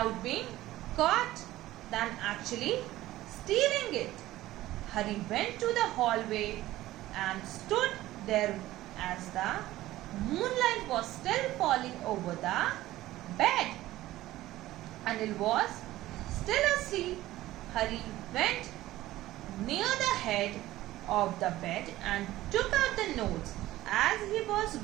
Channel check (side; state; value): left; quieter; 15.9 dB